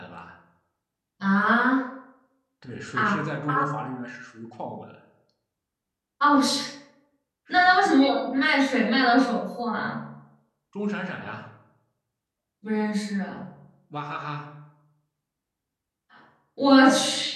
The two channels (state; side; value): identical; both; correlation 1.00